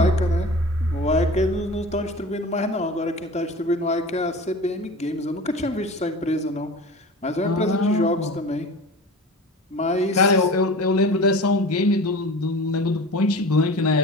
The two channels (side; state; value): both; normal; correlation 0.36